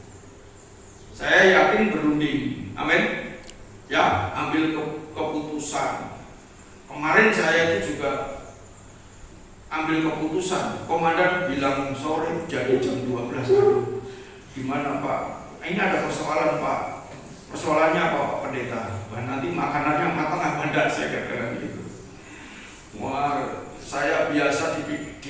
Saya yakin berunding. Amin. Ya, ambil keputusan. Kemarin saya itu juga ambil keputusan. Komandan bilang sore jadi jam 12. Gimana Pak? Ini ada persoalan Pak. Persoalannya apa Pak Pendeta? Wah, nanti makanannya matang apa enggak, saya kira gitu. Wah, saya biasa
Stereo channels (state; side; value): identical; both; correlation 1.00